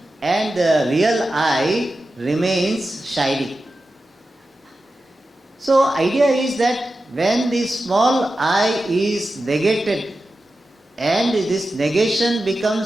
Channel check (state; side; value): normal; both; correlation 0.92